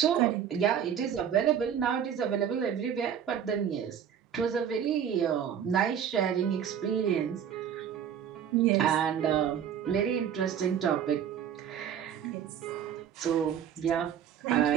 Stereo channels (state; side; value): quieter; left; 8.8 dB